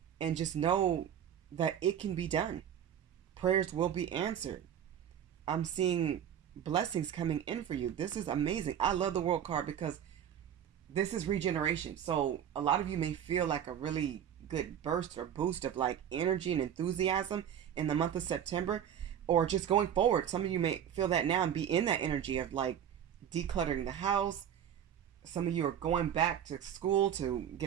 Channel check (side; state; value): left; quieter; 9.4 dB